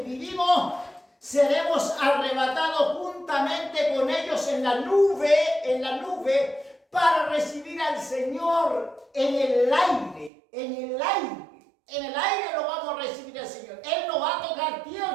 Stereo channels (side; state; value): left; drops out; at 10.3 s